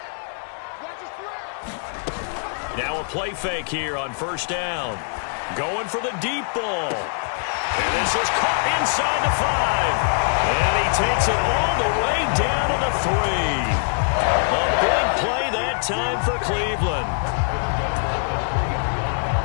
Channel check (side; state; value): right; silent; digital silence